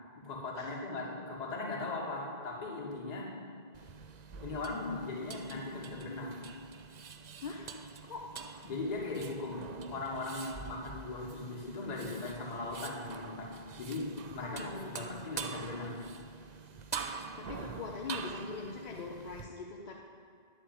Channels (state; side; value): late; right; 1.9 ms